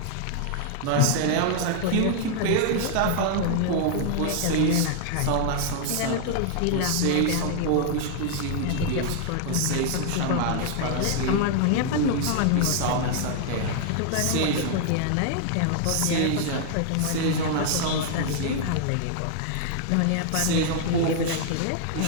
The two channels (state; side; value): different; both; correlation 0.00